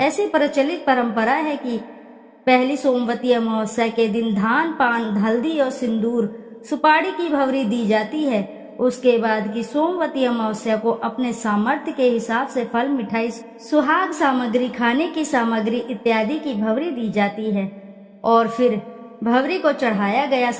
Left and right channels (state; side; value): identical; both; correlation 1.00